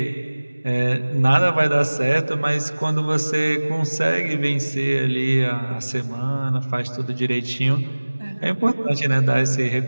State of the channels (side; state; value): both; inverted; correlation -1.00